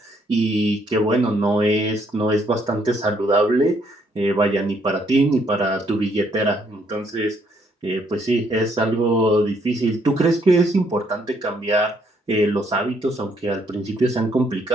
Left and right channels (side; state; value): both; normal; correlation 0.70